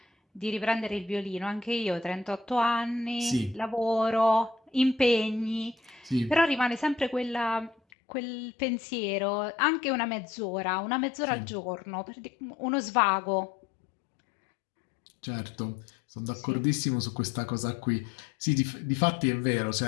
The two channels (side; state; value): right; drops out; at 7.8 s